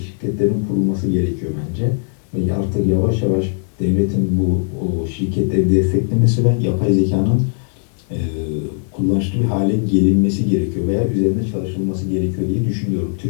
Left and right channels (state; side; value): silent; right; digital silence